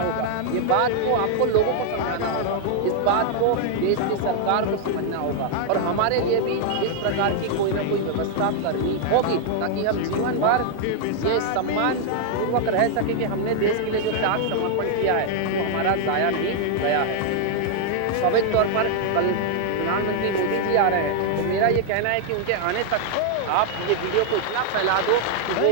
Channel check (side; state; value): both; different; correlation 0.00